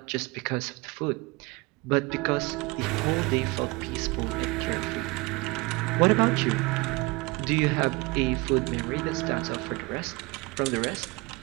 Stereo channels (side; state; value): left; quieter; 24.6 dB